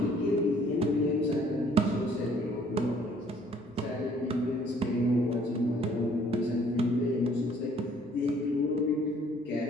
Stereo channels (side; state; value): both; normal; correlation 0.60